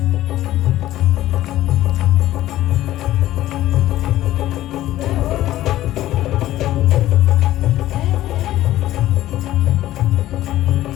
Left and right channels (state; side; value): quieter; right; 14.5 dB